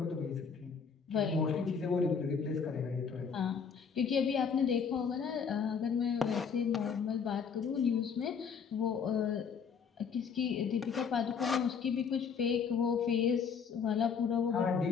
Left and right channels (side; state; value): right; quieter; 6.3 dB